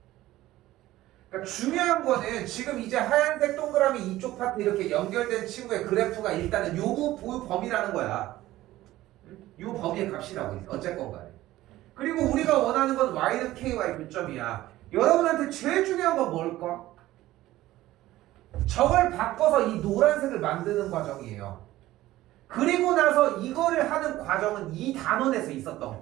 그러니까 중요한 거는 지금 이제 하얀색 동그라미 이쪽 파트 이렇게 연결된 친구의 그래프가 일단은 요 범위라는 거야. 요 범위의 값이라고 어쨌건 간에. 그리고 우리가 원하는 건 y는 ky의 교점이야. 여러분한테 제일 중요한 건 뭘까? 저걸 바꿔서 이 노란색을 만드는 과정이에요. 그리고 나서 이거를 하는 과정은 이 단원에서 있었던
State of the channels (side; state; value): left; quieter; 15.9 dB